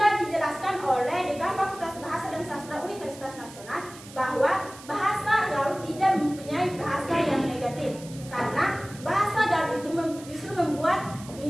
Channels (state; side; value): noise; right; hiss, 18 dB below the sound